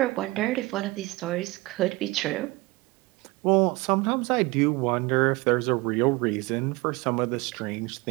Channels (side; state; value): left; quieter; 22.5 dB